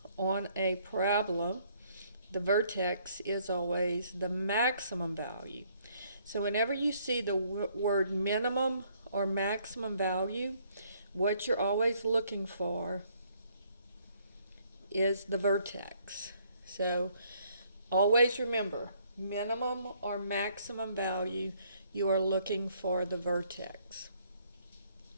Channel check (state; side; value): inverted; both; correlation -0.66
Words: on a parabola, the vertex is always the maximum value. So whenever you see the word minimum or maximum value, what you're always looking for is the vertex. So always remember, minimum or maximum value, you are looking for the vertex.